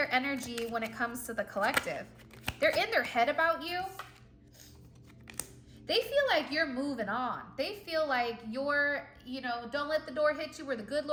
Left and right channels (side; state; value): both; identical; correlation 1.00